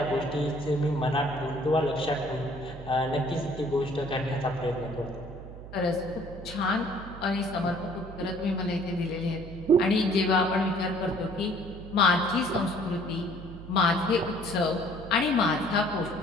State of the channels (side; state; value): right; noise; hum, 13 dB below the sound